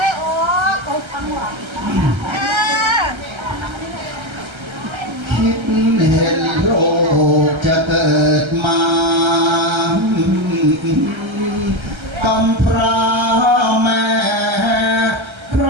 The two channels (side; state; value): left; late; 1.3 ms